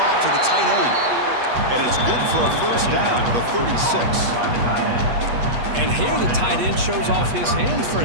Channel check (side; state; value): left; late; 8.3 ms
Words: to the tight end. And it's good for a first down to the 36. And here the tight end shows off his hands for